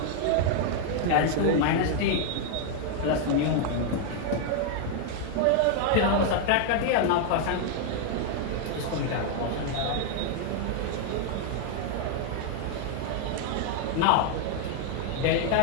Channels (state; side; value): different; both; correlation 0.00